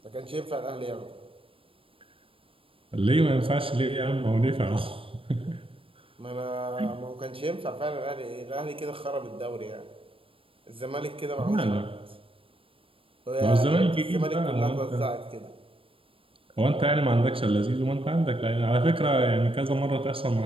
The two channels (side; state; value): left; late; 0.26 ms